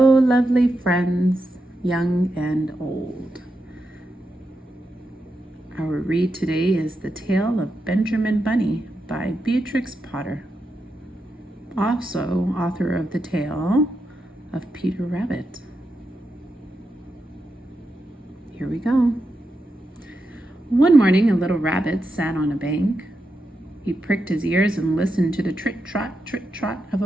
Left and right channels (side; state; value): both; normal; correlation 0.87